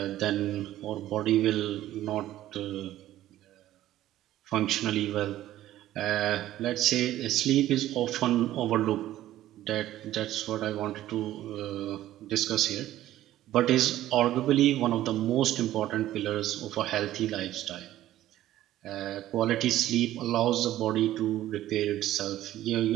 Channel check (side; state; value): left; quieter; 13.9 dB